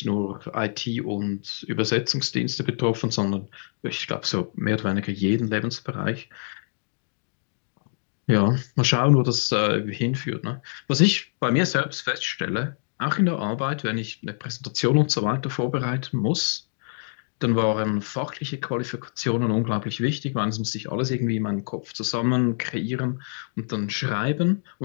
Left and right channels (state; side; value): silent; right; digital silence